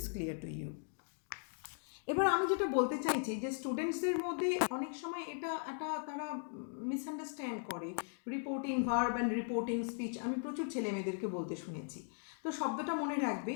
clear to you. এবার আমি যেটা বলতে চাইছি যে স্টুডেন্টসদের মধ্যে অনেক সময় এটা তারা মিসআন্ডারস্ট্যান্ড করে reporting verb and reporting speech. আমি প্রচুর ছেলে মেয়েদেরকে বলতে শুনেছি। তো শব্দটা মনে রাখবে,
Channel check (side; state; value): right; silent; 52 dB below the other